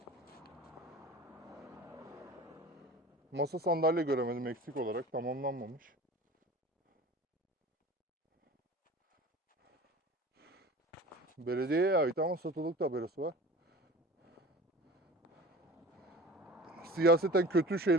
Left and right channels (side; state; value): both; normal; correlation 0.39